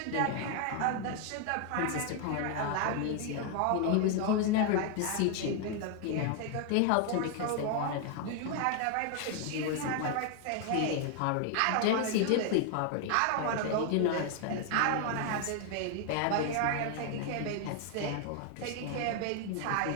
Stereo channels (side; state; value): both; different; correlation 0.00